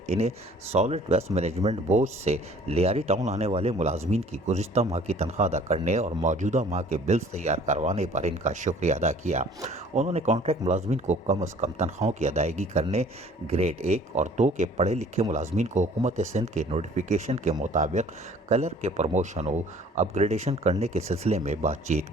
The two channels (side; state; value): both; normal; correlation 0.53